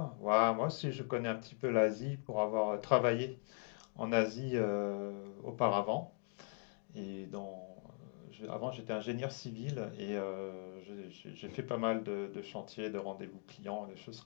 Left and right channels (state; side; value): silent; right; 51 dB below the other